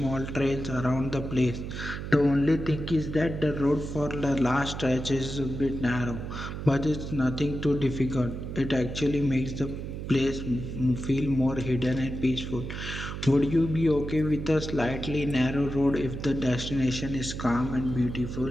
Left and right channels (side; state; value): right; noise; hum, 7 dB below the sound